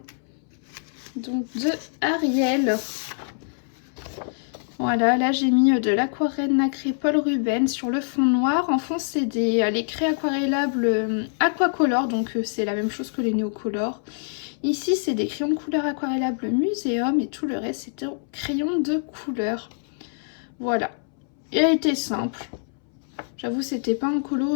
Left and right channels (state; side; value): silent; right; 62 dB below the other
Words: donc de Ariel. Voilà, là j'ai mis de l'aquarelle nacrée Paul Rubens sur le fond noir. En fond, c'est les craies aquarellables Aquacolor, donc c'est la même chose que les Neocolor. Ici, c'est des crayons de couleur aquarellables Muséum et tout le reste, c'est des crayons de couleur. Voilà. Il a été simple. J'avoue, c'était pas un